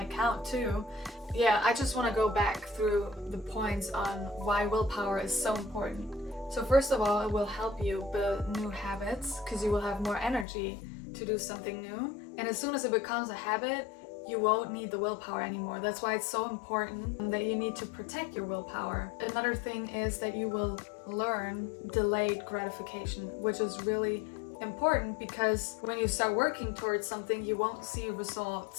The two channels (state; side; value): drops out; right; at 10.5 s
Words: account too. Yeah, I just want to go back through the points on why willpower is so important. So first of all, it will help you build new habits because you will have more energy to do something new, and as soon as it becomes a habit, you won't need the willpower anymore. That's why it's so important that you need to protect your willpower. Another thing is that you will learn delayed gratification, which is really important because when you start working towards something, you won't see